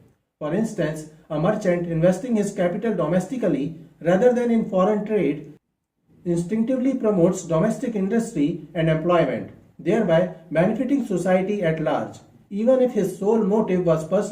For instance, a merchant investing his capital domestically rather than in foreign trade instinctively promotes domestic industry and employment, thereby benefiting society at large, even if his sole motive was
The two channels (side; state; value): both; identical; correlation 1.00